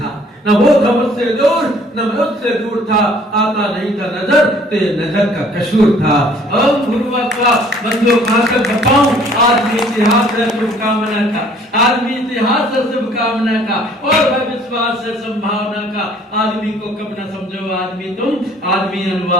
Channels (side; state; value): both; normal; correlation 0.57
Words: न वो था मुझसे दूर न मैं उससे दूर था, आता नहीं था नजर तेरे नजर का कसूर था। ओम भूर्भुवः स्वः, बंदो कहां तक बताऊं, आदमी इतिहास है शुभकामना का, आदमी इतिहास है शुभकामना का, और है विश्वास है संभावना का। आदमी को कब न समझो आदमी तुम, आदमी